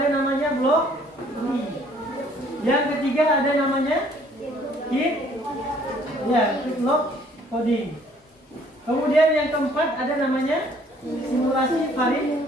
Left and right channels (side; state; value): both; normal; correlation 0.60